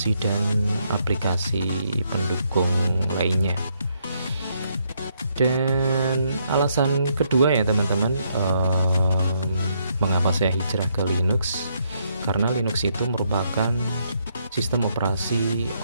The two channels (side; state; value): both; inverted; correlation -0.74